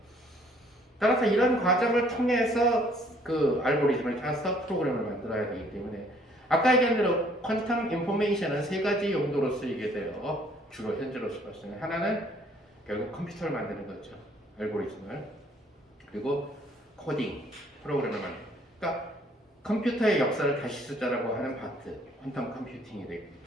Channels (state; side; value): normal; both; correlation 0.61